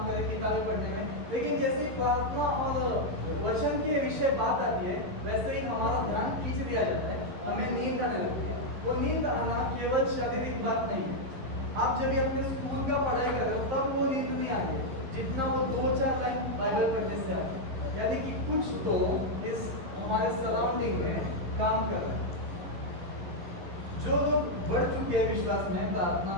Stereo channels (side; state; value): left; late; 11 ms